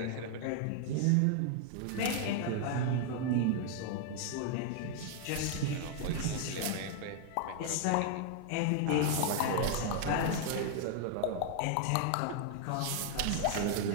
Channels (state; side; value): different; both; correlation 0.00